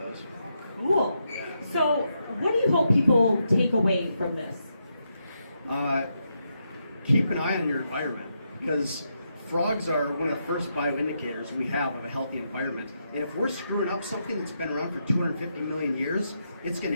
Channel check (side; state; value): both; inverted; correlation -0.82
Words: Cool. So what do you hope people take away from this? Keep an eye on your environment, because frogs are one of the first bioindicators we have of a healthy environment. And if we're screwing up something that's been around for 250 million years, it's going